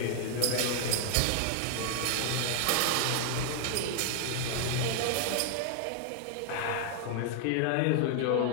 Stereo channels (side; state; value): both; different; correlation 0.00